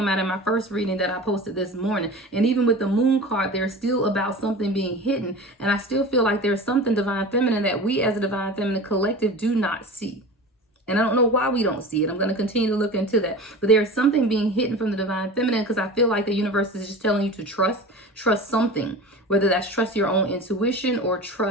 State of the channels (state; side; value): normal; both; correlation 0.34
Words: out in my first reading that I posted this morning. And even with the Moon card, there's still about something being hidden. And I still feel like there's something Divine Feminine that we as a Divine Feminine collective do not see. And I don't know why we don't see it. I'm going to continue to look into that. But there's something being hidden from the Divine Feminine, because I feel like the universe is just telling you to trust something. Whether that's trust your own intuition or